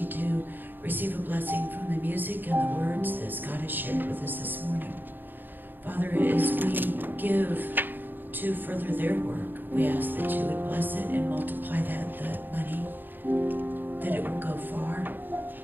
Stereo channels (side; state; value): left; late; 0.092 ms